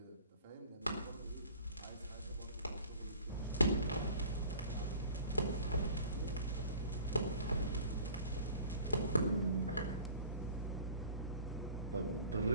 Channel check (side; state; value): both; inverted; correlation -0.45